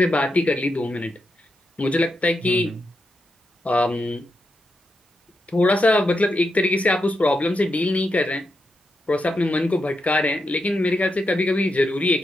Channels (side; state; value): both; normal; correlation 0.85